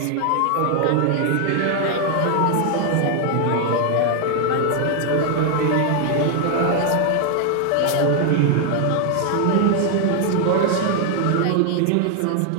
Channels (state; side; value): different; both; correlation 0.00